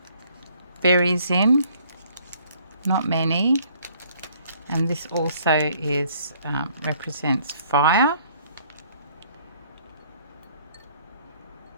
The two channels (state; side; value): inverted; both; correlation -0.61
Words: berries in, not many, and this also is represents fire.